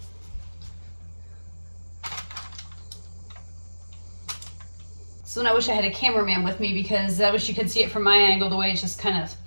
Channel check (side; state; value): both; inverted; correlation -1.00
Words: So I wish I had a cameraman with me, because I wish you could see it from my angle, the way it's just kind of